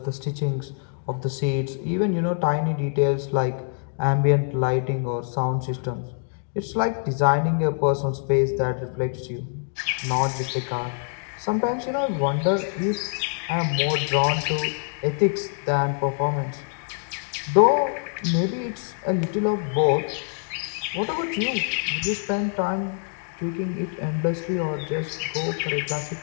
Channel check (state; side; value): silent; right; digital silence